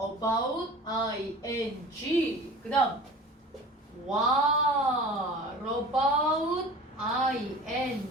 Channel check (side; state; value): both; normal; correlation 0.40